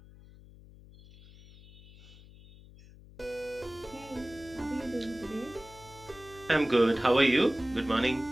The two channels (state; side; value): noise; left; hum, 21 dB below the sound